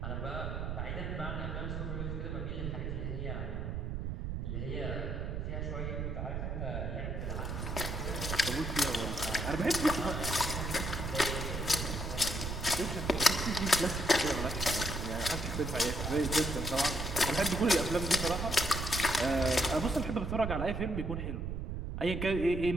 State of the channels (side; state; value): right; noise; rumble, 3 dB below the sound